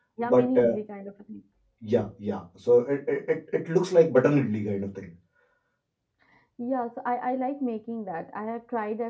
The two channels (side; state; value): both; identical; correlation 1.00